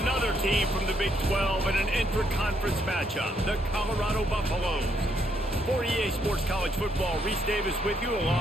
team from the Big 12 in an intra-conference matchup, the Colorado Buffaloes. For EA Sports College Football, Reese Davis with you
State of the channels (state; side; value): normal; both; correlation 0.74